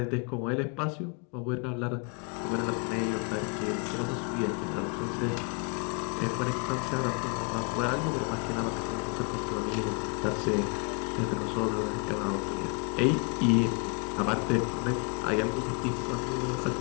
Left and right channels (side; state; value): right; quieter; 34.3 dB